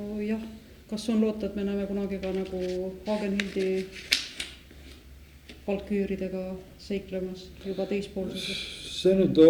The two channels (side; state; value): both; identical; correlation 1.00